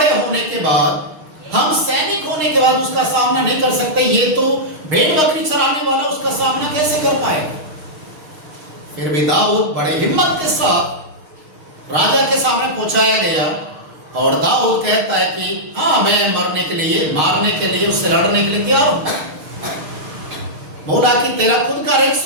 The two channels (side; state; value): left; late; 6.5 ms